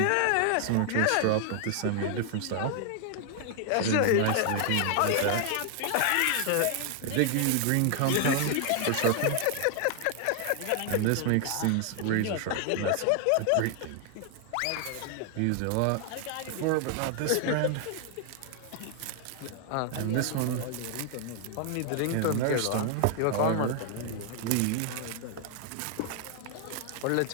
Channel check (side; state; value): both; different; correlation 0.00